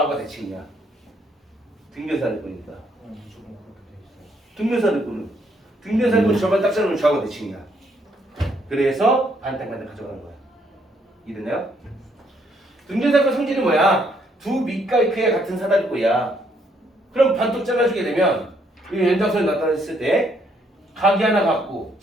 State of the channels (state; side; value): normal; both; correlation 0.71